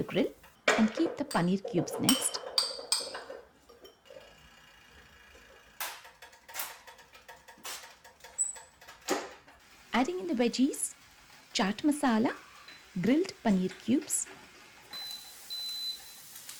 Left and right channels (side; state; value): both; identical; correlation 1.00